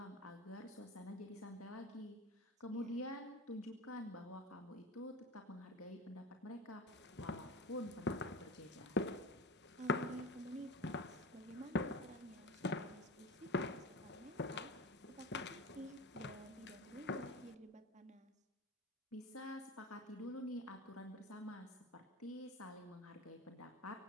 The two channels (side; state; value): both; normal; correlation 0.31